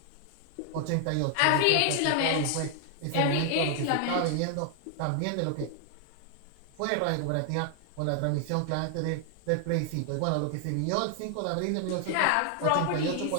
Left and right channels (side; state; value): both; different; correlation 0.00